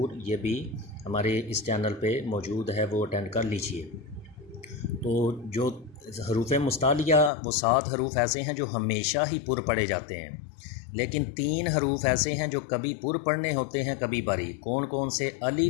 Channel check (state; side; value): drops out; right; at 7.3 s